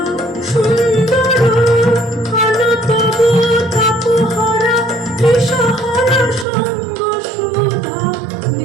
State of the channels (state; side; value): drops out; left; at 6.5 s